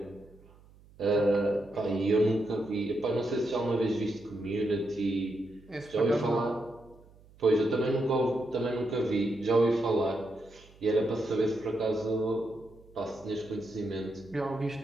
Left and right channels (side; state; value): right; noise; hum, 25 dB below the sound